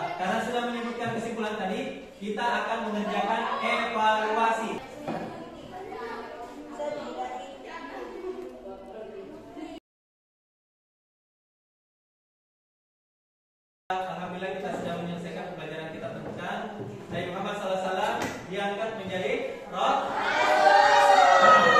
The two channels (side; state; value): both; identical; correlation 1.00